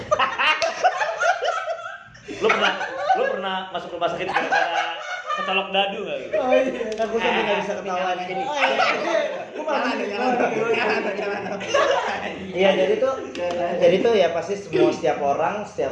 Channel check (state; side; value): identical; both; correlation 1.00